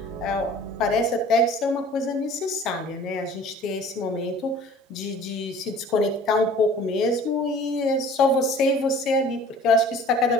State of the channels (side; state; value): both; normal; correlation 0.47